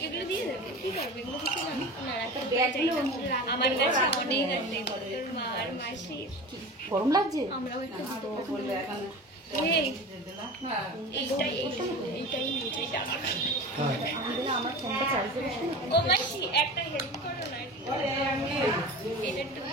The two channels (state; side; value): normal; both; correlation 0.33